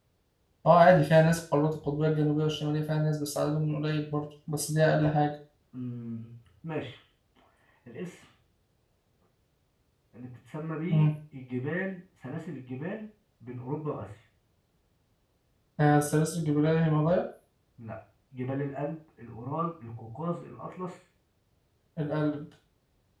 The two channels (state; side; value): identical; both; correlation 1.00